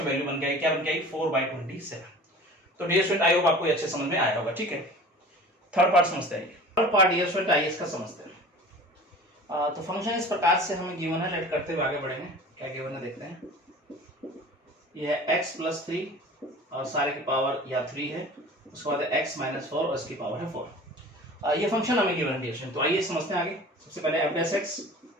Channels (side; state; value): both; normal; correlation 0.41